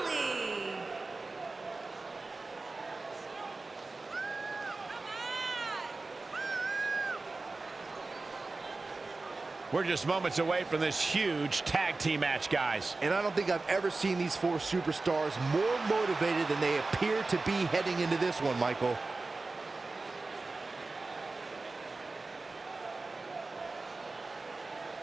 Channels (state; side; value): quieter; left; 3.5 dB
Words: We're just moments away from this huge tag team match, guys. And I don't think I've ever seen these four superstars more motivated than they appear to be heading into this one, Michael.